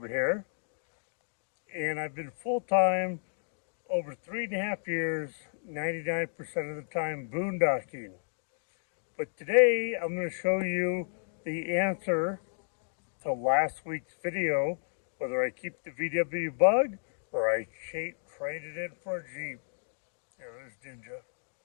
here. And I've been full-time over 3.5 years, 99% of the time boondocking. But today I'm going to show you the answer to last week's video, whether I keep the VW Bug or I traded it for a Jeep. There's Ninja.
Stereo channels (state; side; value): silent; right; digital silence